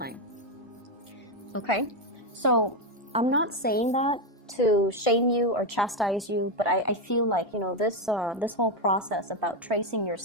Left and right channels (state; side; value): normal; both; correlation 0.07